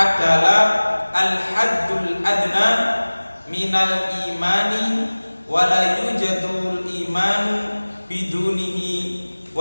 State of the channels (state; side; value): inverted; both; correlation -1.00